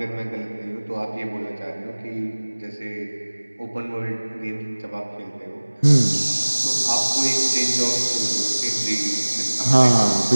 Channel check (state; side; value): inverted; both; correlation -1.00